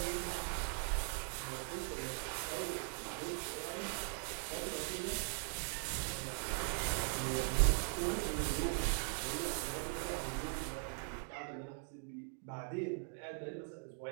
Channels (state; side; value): silent; left; 51 dB below the other